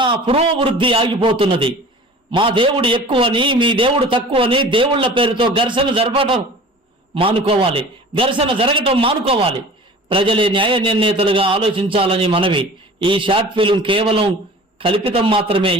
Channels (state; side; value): normal; both; correlation 0.42